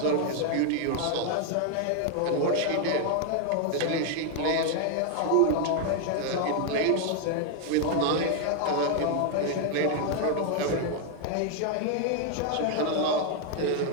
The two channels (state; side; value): different; both; correlation 0.01